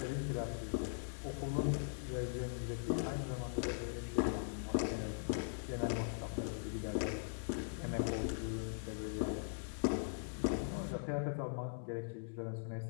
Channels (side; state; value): right; silent; 50 dB below the other